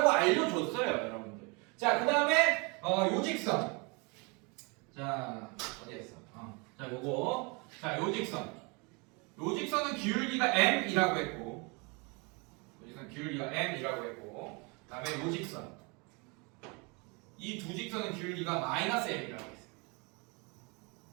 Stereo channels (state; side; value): quieter; left; 30.4 dB